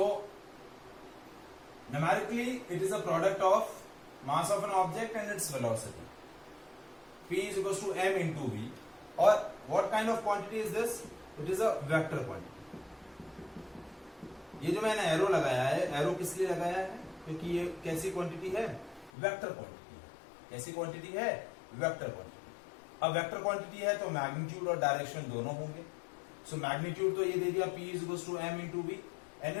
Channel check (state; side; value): drops out; right; at 19.1 s